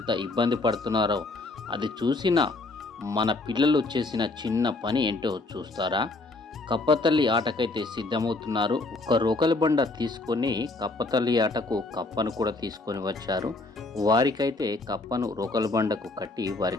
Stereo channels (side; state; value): right; quieter; 3.2 dB